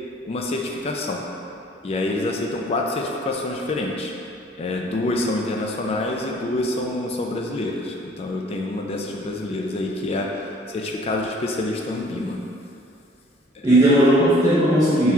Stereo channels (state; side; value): normal; both; correlation 0.56